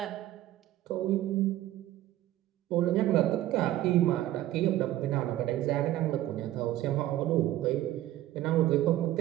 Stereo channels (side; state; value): left; quieter; 14.3 dB